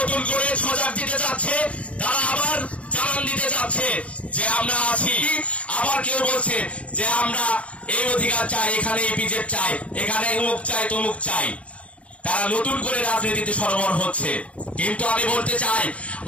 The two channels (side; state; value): right; late; 0.063 ms